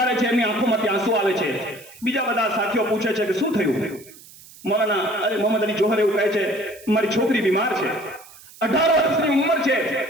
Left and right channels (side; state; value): right; noise; hiss, 21 dB below the sound